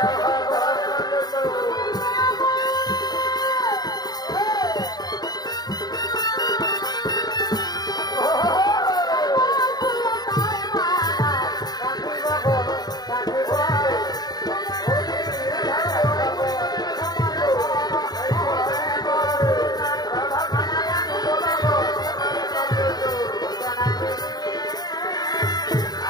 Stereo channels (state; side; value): late; right; 0.19 ms